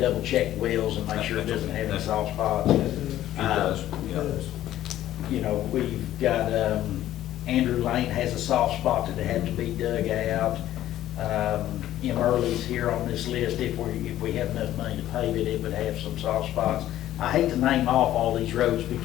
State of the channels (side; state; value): right; quieter; 13.2 dB